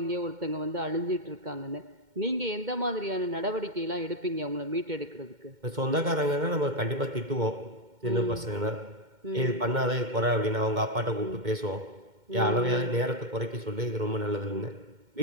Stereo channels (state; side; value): late; left; 2.1 ms